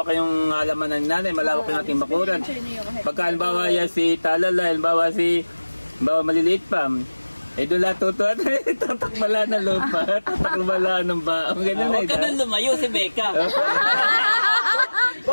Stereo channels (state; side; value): inverted; both; correlation -1.00